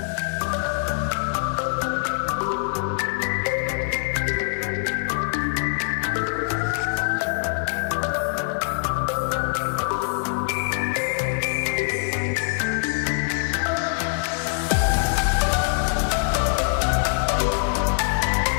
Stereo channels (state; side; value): silent; right; 63 dB below the other